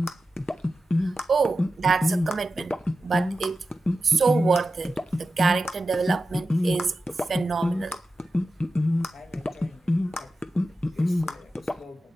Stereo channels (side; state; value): both; normal; correlation 0.92